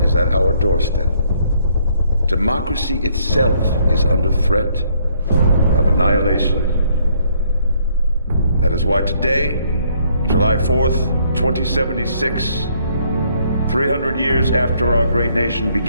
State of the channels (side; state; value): both; inverted; correlation -0.67